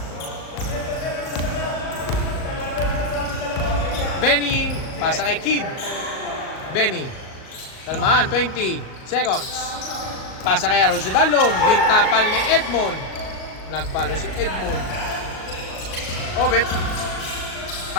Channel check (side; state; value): right; late; 38 ms